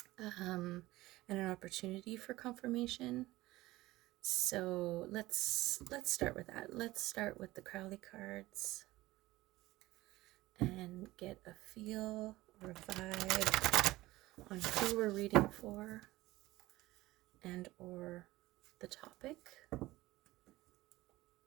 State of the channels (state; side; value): quieter; left; 18.2 dB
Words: and an opportunity for confirmation. So let's start with that. Let's start with the Crowley cards and get a feel or a vibe on who we're reading for and or the topic.